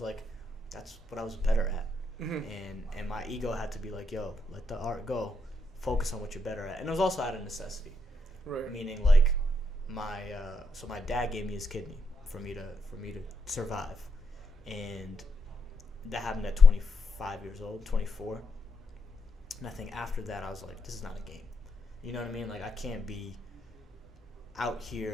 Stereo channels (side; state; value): both; normal; correlation 0.79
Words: like, that's what I was better at. Mm-hmm. And my ego had to be like, yo, let the art go, focus on what you're better at. And it was also out of necessity, right? Meaning, like, my dad gave me his kidney for me to survive, and that happened at 25 years old, 24. And I think after that, I was like, this is not a game. You know what I mean? Like, I can't be out